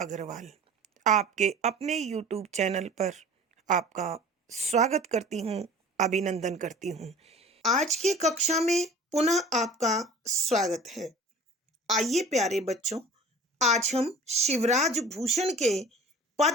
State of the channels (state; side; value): normal; both; correlation 0.43